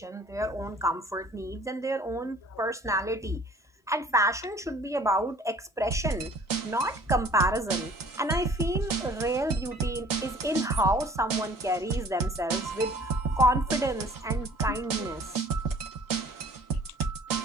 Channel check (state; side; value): normal; both; correlation 0.52